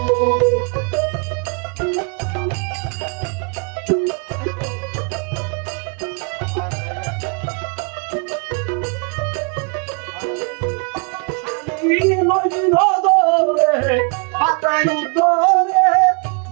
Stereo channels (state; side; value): quieter; left; 36.4 dB